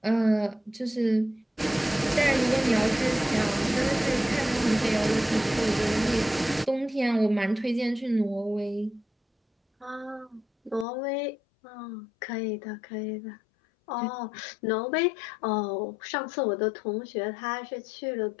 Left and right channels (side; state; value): right; drops out; at 10.9 s